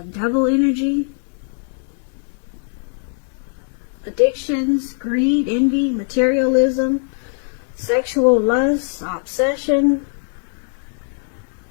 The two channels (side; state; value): right; silent; 59 dB below the other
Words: energy, addictions, greed, envy, materialism, sexual lust, obsession.